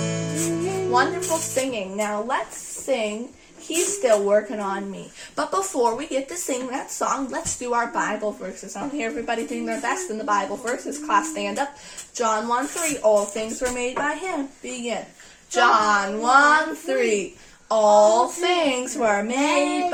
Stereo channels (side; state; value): both; identical; correlation 1.00